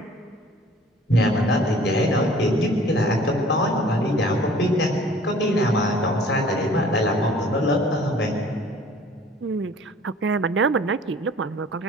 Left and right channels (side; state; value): both; normal; correlation 0.51